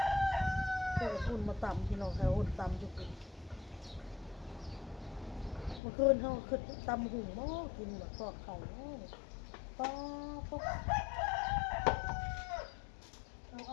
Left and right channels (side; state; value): right; drops out; at 5.8 s